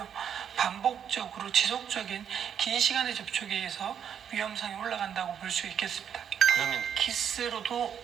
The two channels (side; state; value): left; quieter; 8.4 dB